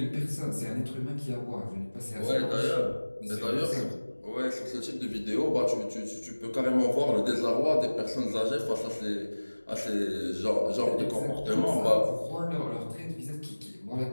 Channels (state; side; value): inverted; both; correlation -1.00